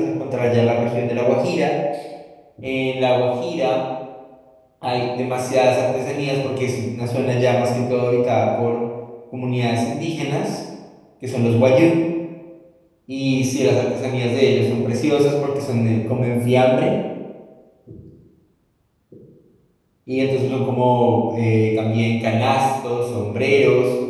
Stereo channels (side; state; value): both; identical; correlation 1.00